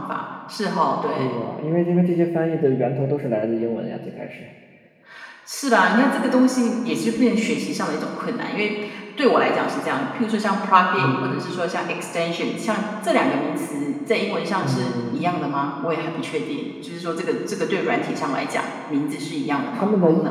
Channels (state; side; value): identical; both; correlation 1.00